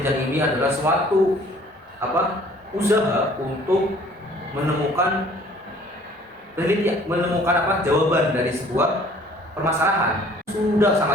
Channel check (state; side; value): normal; both; correlation 0.54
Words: ini adalah suatu usaha untuk menemukan jawaban dari sebuah permasalahan. Sudah